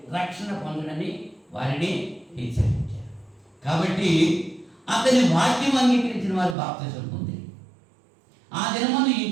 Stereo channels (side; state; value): left; drops out; at 6.6 s